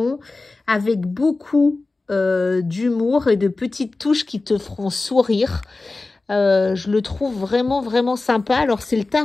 avec beaucoup d'humour et de petites touches qui te feront sourire. Je le trouve vraiment sympa. Alors c'est le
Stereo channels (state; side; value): quieter; right; 3.4 dB